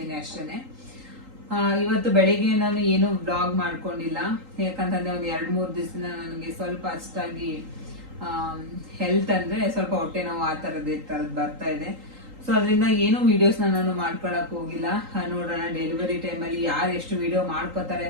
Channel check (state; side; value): late; left; 3.8 ms